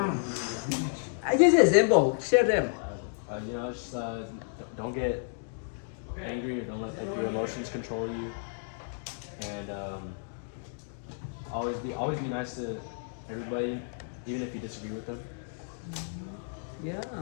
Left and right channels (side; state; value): right; silent; digital silence